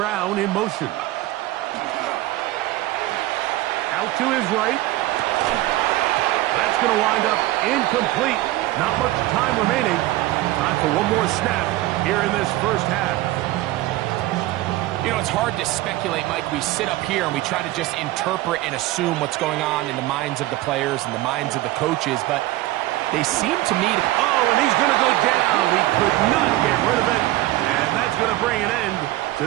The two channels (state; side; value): quieter; left; 17.1 dB